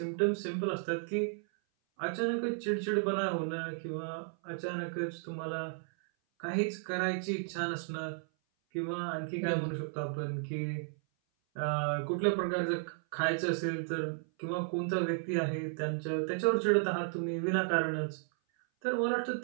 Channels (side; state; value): left; silent; 55 dB below the other